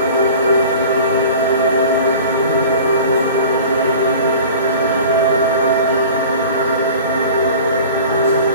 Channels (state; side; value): inverted; both; correlation -0.42